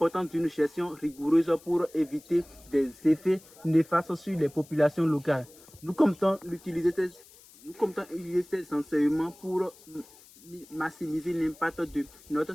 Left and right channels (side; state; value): left; noise; hiss, 24 dB below the sound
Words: d'une gestion rigoureuse pour éviter des effets néfastes sur les populations locales. Nous comptons utiliser ces enseignements pour maximiser l'impact de notre